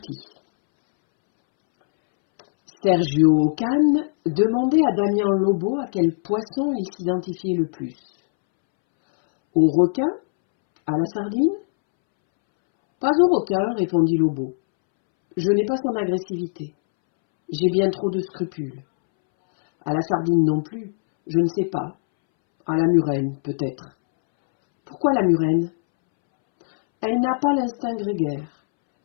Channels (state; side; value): silent; right; 65 dB below the other